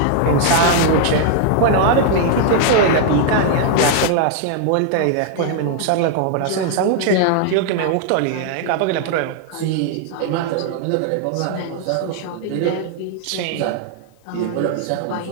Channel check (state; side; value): different; both; correlation 0.00